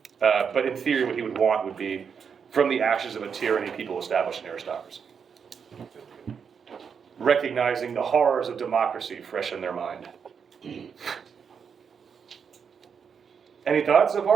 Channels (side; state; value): left; quieter; 6.6 dB